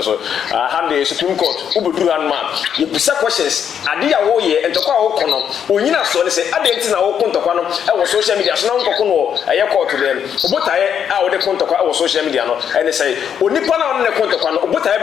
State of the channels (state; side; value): quieter; right; 8.3 dB